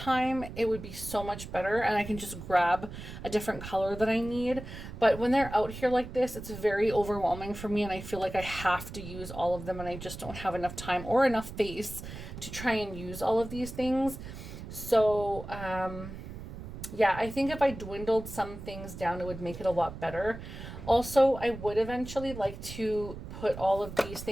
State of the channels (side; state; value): right; noise; rumble, 11 dB below the sound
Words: it would be so much better, and I can just grab a different color that I need. But when they're out here like this, it's very overwhelming for me, and I feel like I have to use all of them, and I just don't have enough time or enough face to try and use all of these things. So, yeah, I think if I dwindled some things down, it would make it a lot better. Also, I would eventually like to put all of these